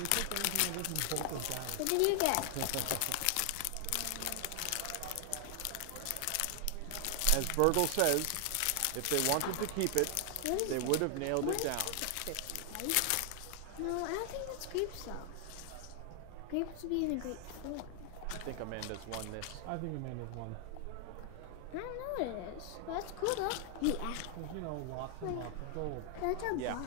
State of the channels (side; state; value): both; different; correlation 0.00